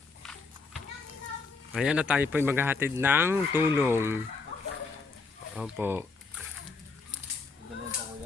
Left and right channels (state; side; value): quieter; right; 4.3 dB